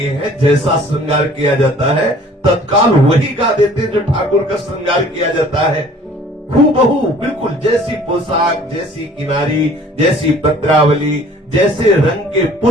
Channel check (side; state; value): both; normal; correlation 0.52